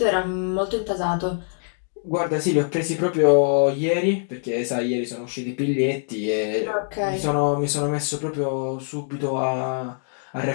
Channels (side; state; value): right; silent; digital silence